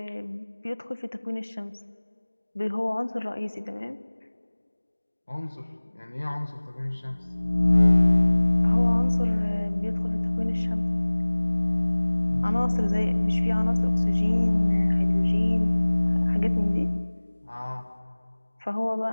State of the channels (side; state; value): both; inverted; correlation -1.00